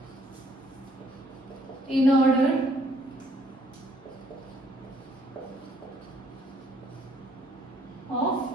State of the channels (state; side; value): normal; both; correlation 0.65